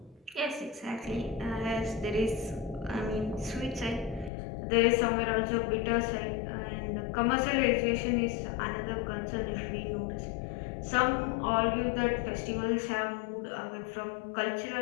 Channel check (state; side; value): drops out; right; at 4.3 s